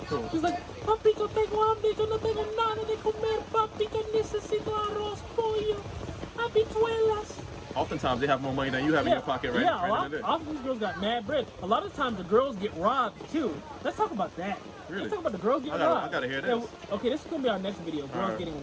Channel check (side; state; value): both; identical; correlation 1.00